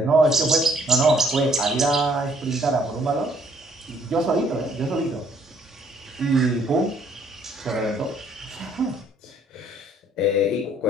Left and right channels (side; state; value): both; normal; correlation 0.64